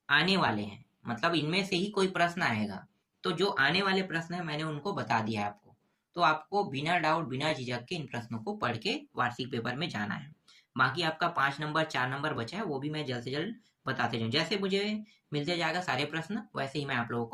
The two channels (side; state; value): both; identical; correlation 1.00